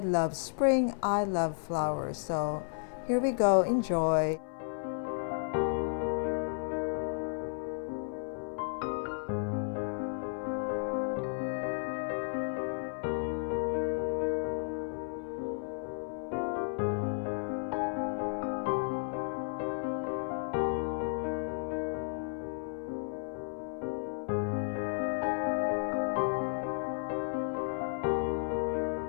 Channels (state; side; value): silent; right; 56 dB below the other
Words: spring, I love flowers, so here we go, enjoy.